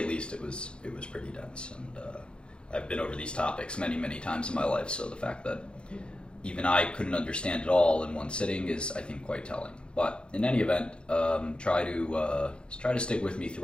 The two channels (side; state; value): right; late; 0.055 ms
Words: least it was pretty dense, and I've been over these topics many times in my life, so the fact that even I couldn't understand it all in one sitting is, I think, quite telling. But in any event, try to stick with me